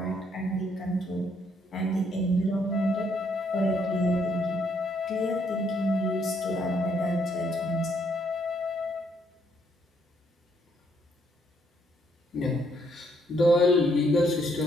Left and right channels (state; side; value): normal; both; correlation 0.71